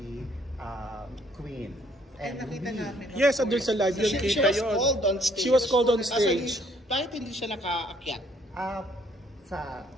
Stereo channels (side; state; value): both; normal; correlation 0.64